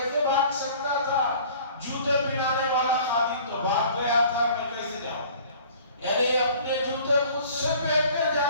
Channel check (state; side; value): inverted; both; correlation -0.49